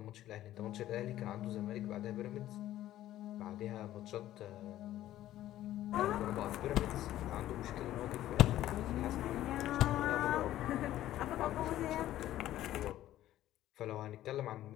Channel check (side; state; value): right; quieter; 13.6 dB